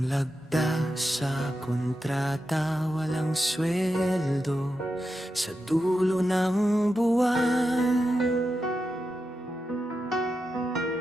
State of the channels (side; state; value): both; normal; correlation 0.88